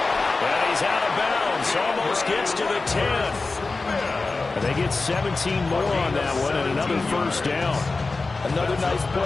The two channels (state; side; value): quieter; right; 3.7 dB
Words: And he's out of bounds. Almost gets to the 10. And they get 17 more on that one and another 1st down. Another nice